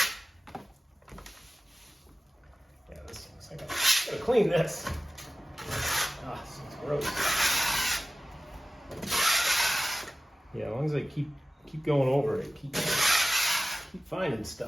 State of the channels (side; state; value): both; normal; correlation 0.96